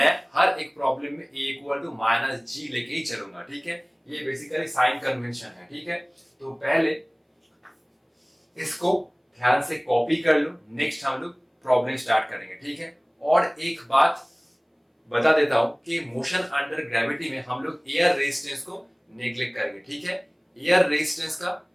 हर एक प्रॉब्लम में a इक्वल टू -g लेके ही चलूंगा, ठीक है। ये बेसिकली साइन कन्वेंशन है, ठीक है। तो पहले इसको ध्यान से कॉपी कर लो, नेक्स्ट हम लोग प्रॉब्लम स्टार्ट करेंगे, ठीक है। और एक बात बता देता हूं कि मोशन अंडर ग्रेविटी में हम लोग एयर रेजिस्टेंस को नेग्लेक्ट करेंगे, ठीक है। एयर रेजिस्टेंस का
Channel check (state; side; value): identical; both; correlation 1.00